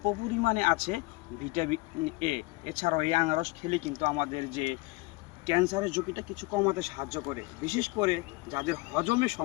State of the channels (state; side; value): quieter; right; 23.9 dB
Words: পরিমাণে আছে ভিটামিন এ। এছাড়াও এই আনারস খেলে কিন্তু আমাদের যে ক্যান্সারের ঝুঁকিটা কিছু কমাতে সাহায্য করে। বিশেষ করে যাদের হজমের